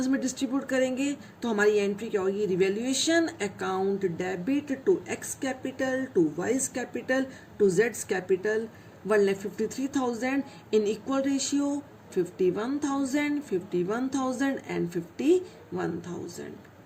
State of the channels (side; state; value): both; identical; correlation 1.00